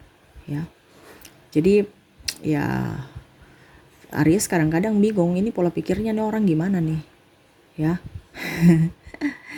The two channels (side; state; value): both; identical; correlation 1.00